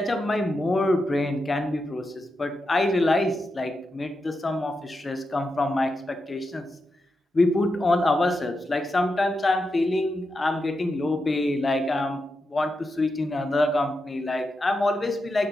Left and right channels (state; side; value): normal; both; correlation 0.87